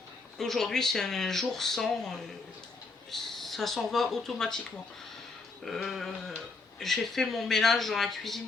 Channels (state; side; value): quieter; right; 3.9 dB